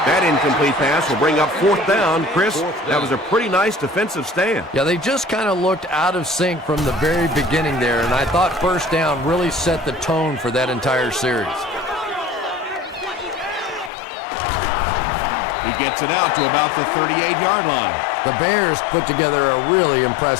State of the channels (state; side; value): drops out; right; at 13.9 s